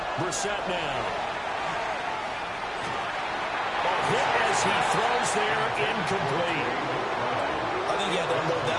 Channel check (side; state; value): both; identical; correlation 1.00